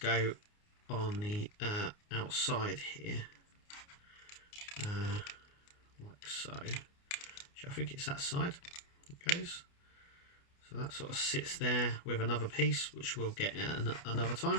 on the outside here, like so. I think it's that side it goes. So that sort of sits there with another piece, which we'll get at another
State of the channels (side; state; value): right; late; 29 ms